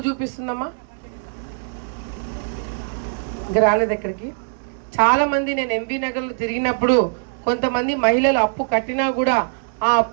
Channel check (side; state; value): left; silent; digital silence